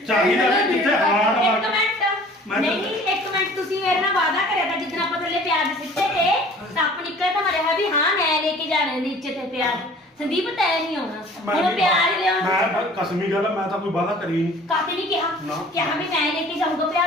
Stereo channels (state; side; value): normal; both; correlation 0.49